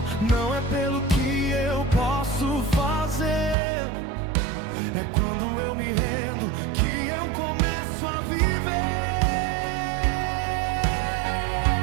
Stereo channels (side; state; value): left; drops out; at 3.6 s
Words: não é pelo que eu posso fazer. É quando eu me rendo que eu começo a viver.